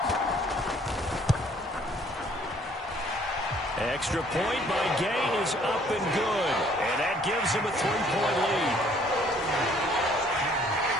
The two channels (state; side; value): normal; both; correlation 0.60